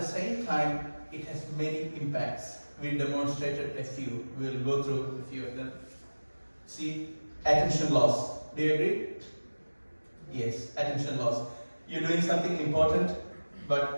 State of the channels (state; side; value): inverted; both; correlation -1.00